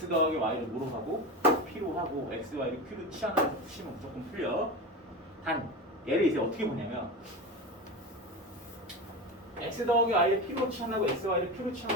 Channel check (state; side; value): normal; both; correlation 0.24